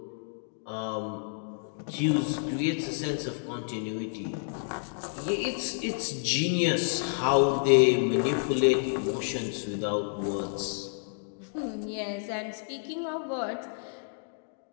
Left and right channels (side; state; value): right; silent; digital silence